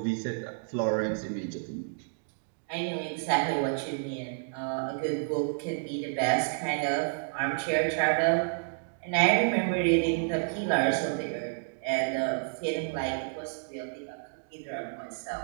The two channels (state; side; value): silent; left; digital silence